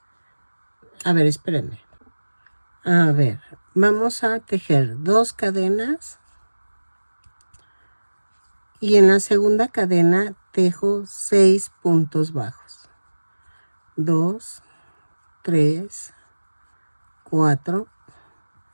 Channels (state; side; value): inverted; both; correlation -1.00